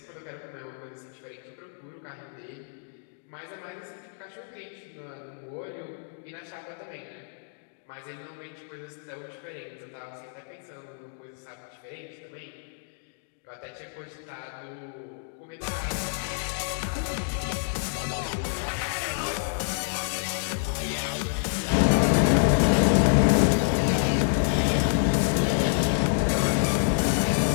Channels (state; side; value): silent; right; digital silence